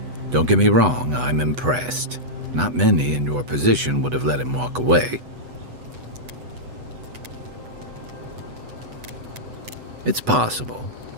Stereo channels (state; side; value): late; left; 8.0 ms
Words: Don't get me wrong, I'm impressed. Not many in your position would have let him walk away. It's possible.